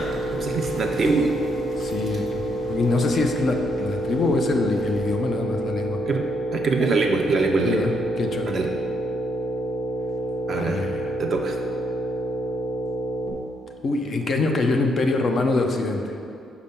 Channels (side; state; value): both; normal; correlation 0.75